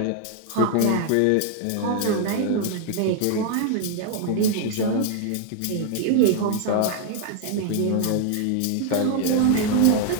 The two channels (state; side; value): different; both; correlation 0.00